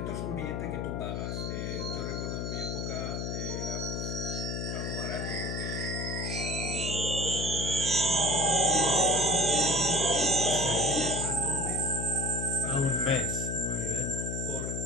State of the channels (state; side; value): noise; left; hum, 2 dB below the sound